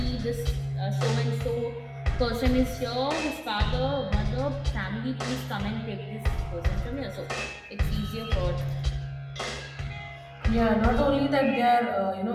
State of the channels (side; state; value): both; identical; correlation 1.00